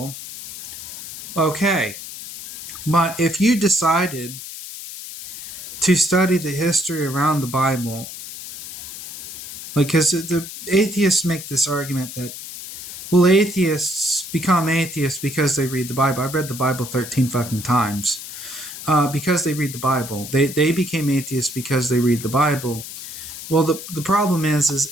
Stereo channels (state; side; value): noise; left; hiss, 11 dB below the sound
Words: okay, but if you decided to study the history around the Bible, because the atheists make this argument that, well, atheists become atheists because they read the Bible. I've read the Bible 13 fucking times. Because they read the Bible. They became atheists because they read the Bible. Well, the problem